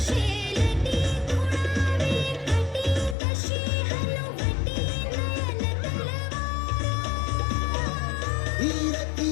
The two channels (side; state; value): right; drops out; at 3.2 s